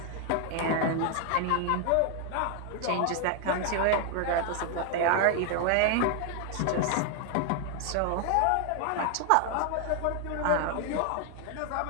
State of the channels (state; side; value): different; both; correlation 0.00